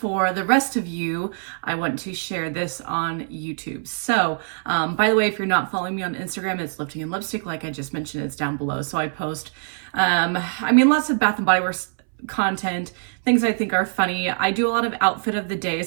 the rest of you, I want to share this on YouTube. So, by the way, if you're not following me on Instagram, it's Lifting and Lipstick. Like I just mentioned, it's down below. So I post, lots of Bath and Body Works content, things I think are funny. I do a lot of outfit of the day,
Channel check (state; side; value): silent; left; 62 dB below the other